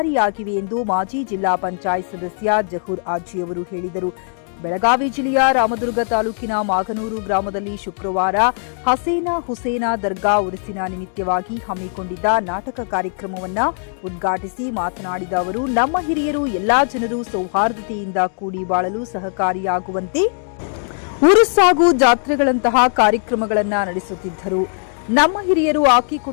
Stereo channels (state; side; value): silent; right; 62 dB below the other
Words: ಎಂದು ಮಾಜಿ ಜಿಲ್ಲಾ ಪಂಚಾಯತ್ ಸದಸ್ಯ ಜಹೂರ್ ಆಜಿಯವರು ಹೇಳಿದರು. ಬೆಳಗಾವಿ ಜಿಲ್ಲೆಯ ರಾಮದುರ್ಗ ತಾಲೂಕಿನ ಮಾಗನೂರು ಗ್ರಾಮದಲ್ಲಿ ಶುಕ್ರವಾರ ಹಸೇನಾ ಹುಸೇನಾ ದರ್ಗಾ ಉರುಸಿನ ನಿಮಿತ್ತವಾಗಿ ಹಮ್ಮಿಕೊಂಡಿದ್ದ ನಾಟಕ ಕಾರ್ಯಕ್ರಮವನ್ನು ಉದ್ಘಾಟಿಸಿ ಮಾತನಾಡಿದ ಅವರು, ನಮ್ಮ ಹಿರಿಯರು ಎಲ್ಲಾ ಜನರು ಸೌಹಾರ್ದತೆಯಿಂದ ಕೂಡಿ ಬಾಳಲು ಸಹಕಾರಿಯಾಗುವಂತೆ ಉರುಸ್ ಹಾಗೂ ಜಾತ್ರೆಗಳಂತಹ ಕಾರ್ಯಕ್ರಮಗಳನ್ನು ನಡೆಸುತ್ತಿದ್ದರು. ನಮ್ಮ ಹಿರಿಯರು